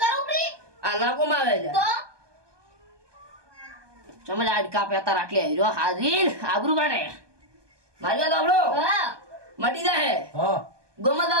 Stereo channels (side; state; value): left; late; 1.2 ms